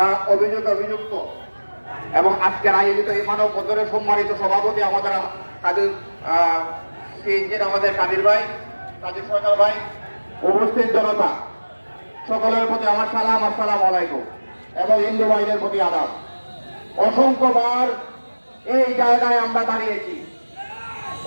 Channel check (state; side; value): inverted; both; correlation -1.00